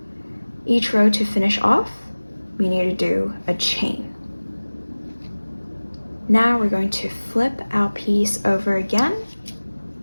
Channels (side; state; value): both; inverted; correlation -1.00